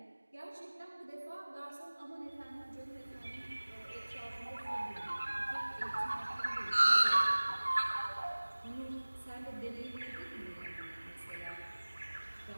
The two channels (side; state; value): both; inverted; correlation -1.00